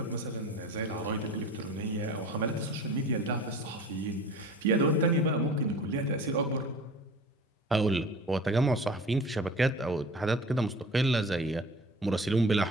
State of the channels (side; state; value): both; normal; correlation 0.41